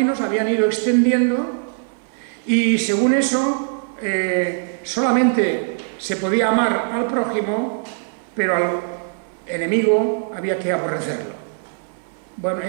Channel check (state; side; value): silent; left; 56 dB below the other